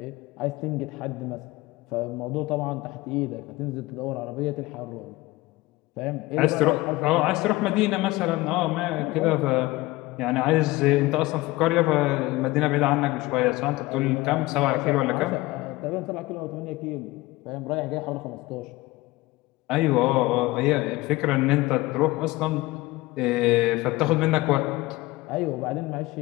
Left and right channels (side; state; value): right; quieter; 19.8 dB